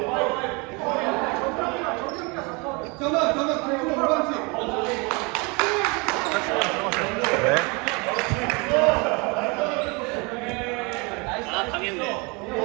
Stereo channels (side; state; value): left; quieter; 29.3 dB